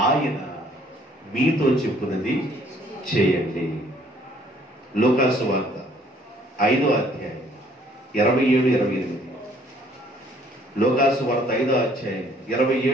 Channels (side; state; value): both; normal; correlation 0.61